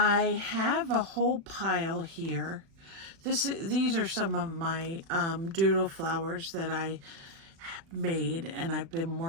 have a whole pile here. These are some of my doodle flowers that I made, and I've been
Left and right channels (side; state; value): left; late; 36 ms